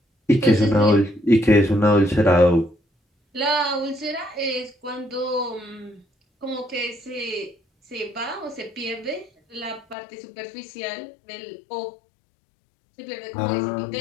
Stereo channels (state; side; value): drops out; right; at 10.0 s